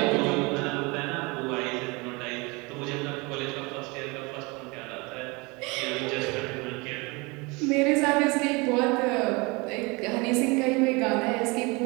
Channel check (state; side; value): quieter; left; 26.9 dB